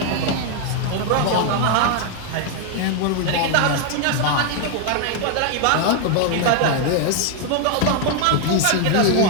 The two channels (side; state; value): both; different; correlation 0.01